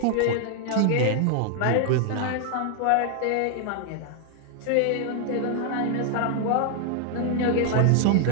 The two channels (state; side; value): different; both; correlation 0.00